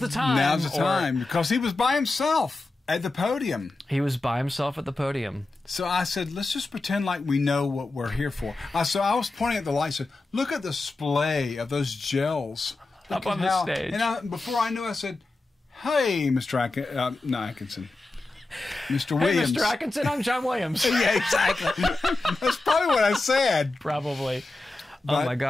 time." Now's the time, because he was by himself at the podium. He was by himself at the podium. So I said, let's just pretend like we know what we're here for. So I was pointing at the lights and said, look at the display of those gels. Up on the stage. And before I knew, I said, hey, Mr. Atkinson. Mr. Williams. Hey, Mr. Atkinson, I'm John Williams. Yeah, exactly. That's probably what I said. Probably. But oh, my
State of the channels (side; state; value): right; quieter; 3.1 dB